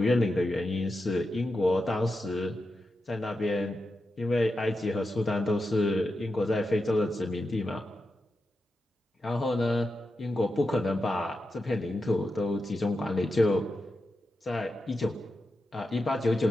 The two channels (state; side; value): normal; both; correlation 0.89